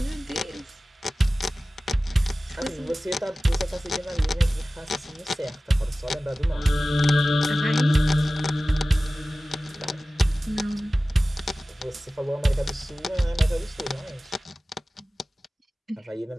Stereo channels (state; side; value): normal; both; correlation 0.96